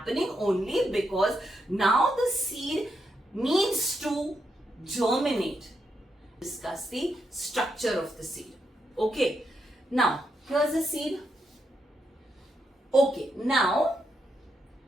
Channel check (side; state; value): both; normal; correlation 0.82